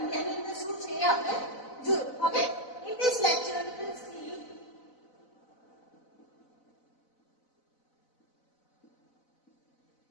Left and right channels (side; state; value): right; late; 4.0 ms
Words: અંદર શું છે આપણે જો હવે in this lecture we will see